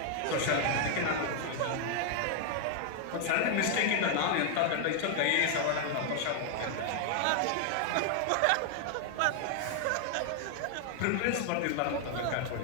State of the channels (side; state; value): both; different; correlation 0.00